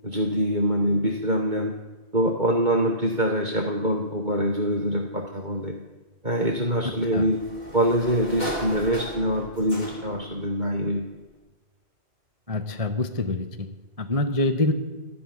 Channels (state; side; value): late; left; 2.1 ms